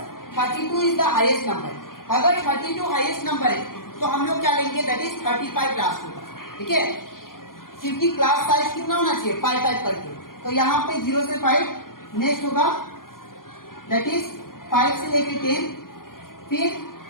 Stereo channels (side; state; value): right; late; 0.91 ms